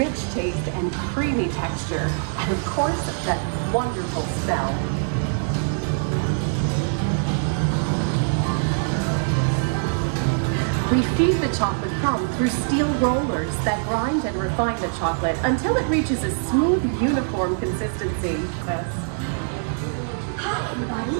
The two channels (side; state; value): left; silent; 62 dB below the other